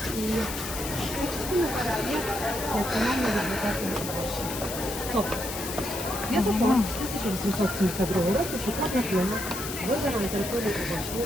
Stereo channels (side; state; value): left; noise; hiss, 7 dB below the sound